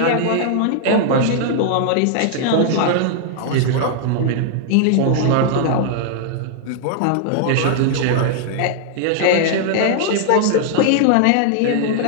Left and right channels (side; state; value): both; different; correlation -0.01